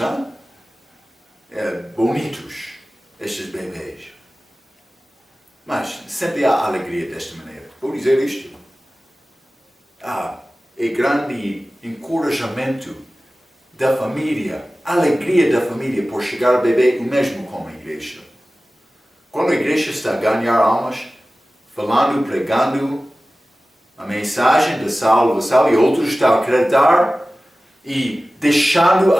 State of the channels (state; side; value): normal; both; correlation 0.96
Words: bonitos, estes bebês. Mas sempre há alegria desta maneira. Vou dizer isto. É grande encorajamento da família, alegria da família por chegar ao bebê, o mesmo com a igreja. Quando a igreja está a ganhar almas, falando, pregando a mensagem da salvação, e outros estão a acreditar e deixando